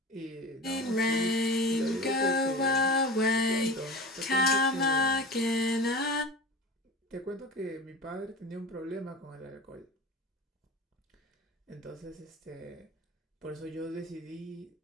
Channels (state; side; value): normal; both; correlation 0.32